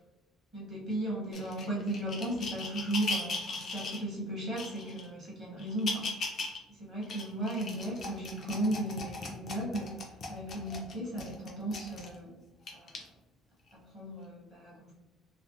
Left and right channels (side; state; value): both; normal; correlation 0.45